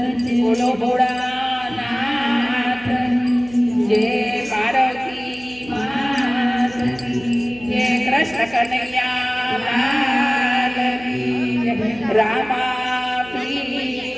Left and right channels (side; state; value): right; noise; hum, 20 dB below the sound